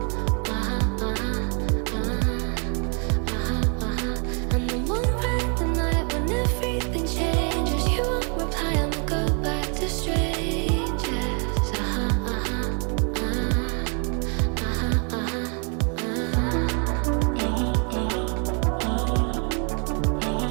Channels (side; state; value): left; quieter; 38.3 dB